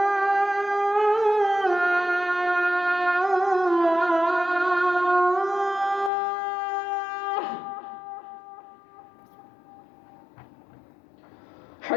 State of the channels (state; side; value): drops out; right; at 6.1 s